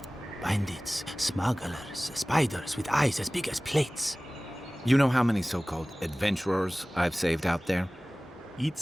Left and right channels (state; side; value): normal; both; correlation 0.98